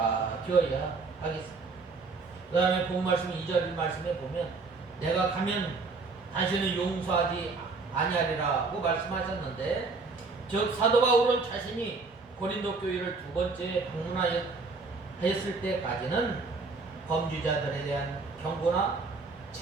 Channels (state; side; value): quieter; left; 4.1 dB